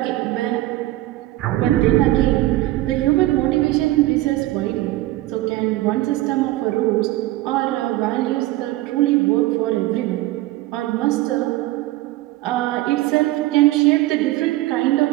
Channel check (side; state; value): left; quieter; 17.2 dB